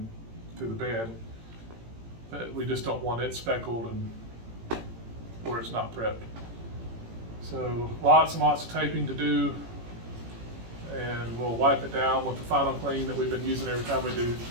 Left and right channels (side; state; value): left; late; 18 ms